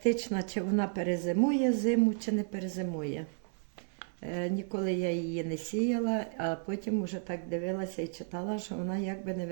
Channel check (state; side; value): silent; left; 56 dB below the other